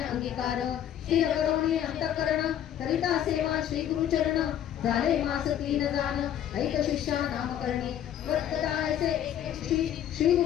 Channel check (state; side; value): quieter; right; 10.5 dB